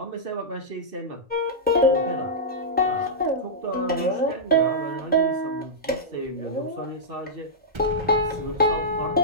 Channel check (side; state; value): both; normal; correlation -0.13